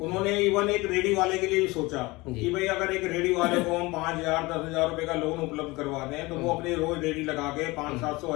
उन्होंने इवन एक रेडी वाले के लिए भी सोचा कि भाई अगर एक रेडी वाले को हम 5,000 10,000 रुपए का लोन उपलब्ध करवा दें तो वो अपने रोज रेडी लगा के 500-700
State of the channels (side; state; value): right; quieter; 22.3 dB